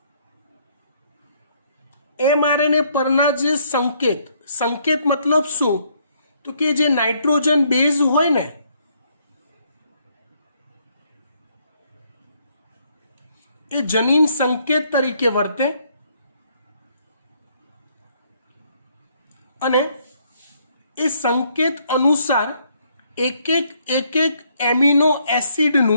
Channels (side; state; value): both; inverted; correlation -0.69